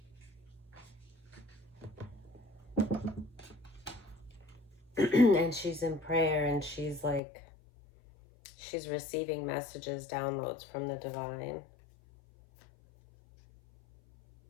And she's in prayer, and she's like, she's receiving messages, downloads from the divine.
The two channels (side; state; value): right; drops out; at 7.2 s